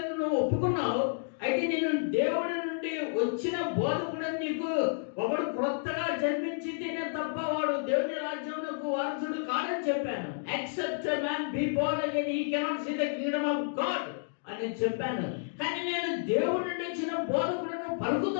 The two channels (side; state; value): right; silent; digital silence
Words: నువ్వు ఒప్పుకున్నావు, అయితే నేను దేవుడి నుండి వచ్చిన బోధకుడని నీకు ఒకడు క్రొత్తగా జన్మించితేనే తప్ప వాడు దేవుని రాజ్యమునకు వారసుడు కాడని చెప్పాను. Except a man be born again he cannot see the kingdom of God అని చెప్పాను. కానీ నేను దేవుడి నుండి వచ్చిన బోధకుడును